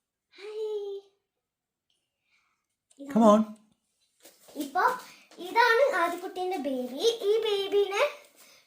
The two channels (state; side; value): identical; both; correlation 1.00